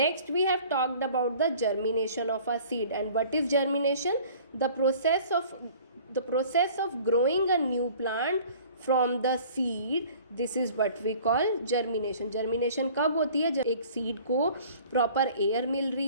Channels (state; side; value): inverted; both; correlation -0.49